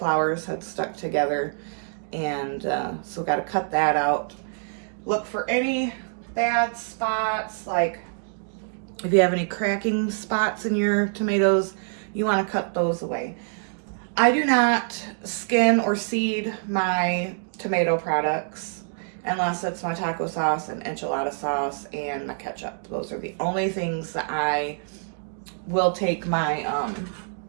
had stuck together, and so got to cut that out. Look for any bad spots, like if you have any cracking spots in your tomatoes, you want to cut those away. I do not skin or seed my tomato products unless it's my taco sauce and enchilada sauce and my ketchup. Those are the only things that I will take my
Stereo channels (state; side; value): silent; left; digital silence